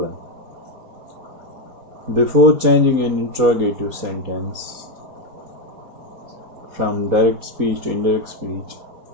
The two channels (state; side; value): late; left; 4.2 ms